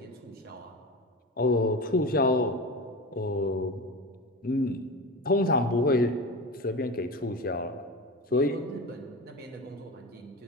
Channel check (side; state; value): both; normal; correlation 0.27